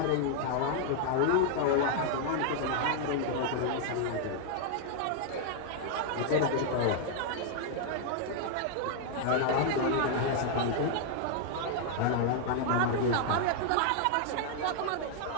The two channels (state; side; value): different; both; correlation 0.00